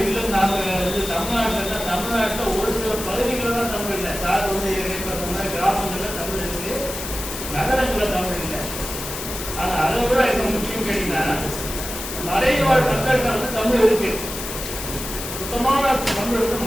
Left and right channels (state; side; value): noise; left; hiss, 7 dB below the sound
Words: இல்லைன்னு நாங்கள் தமிழ்நாட்டில் ஒரு சில பகுதிகளில் தான் தமிழ் இல்லை. சார் வந்து கிராமங்களில் தமிழ் இருக்கு, நகரங்களில் தமிழ் இல்லை. ஆனால் அதை விட எனக்கு முக்கியம் கேட்டீங்கன்னா மலைவாழ் மக்கள்கிட்ட வந்து தமிழ் இருக்கு. சுத்தமான தமிழ் வந்து